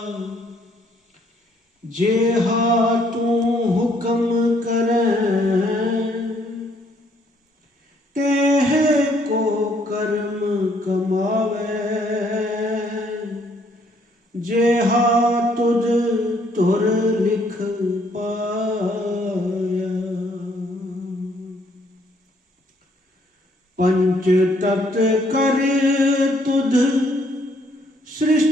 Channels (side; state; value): both; normal; correlation 0.67